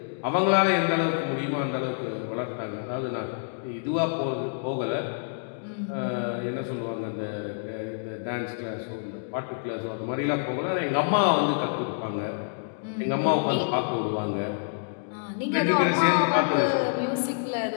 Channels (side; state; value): right; silent; digital silence